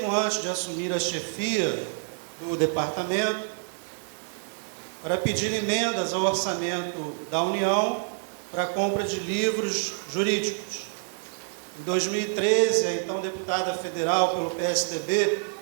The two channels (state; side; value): silent; left; digital silence